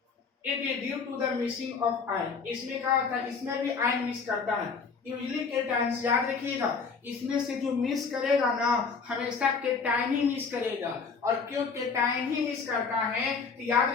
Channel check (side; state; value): right; quieter; 5.2 dB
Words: it is due to the missing of ion. इसमें क्या होता है, इसमें भी आयन मिस करता है। यूजली केटायन्स, याद रखिएगा, इसमें से जो मिस करेगा ना, हमेशा केटायन ही मिस करेगा। और क्यों केटायन ही मिस करता है, तो याद